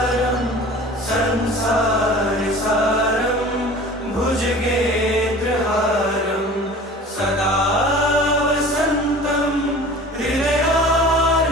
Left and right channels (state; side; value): normal; both; correlation 0.42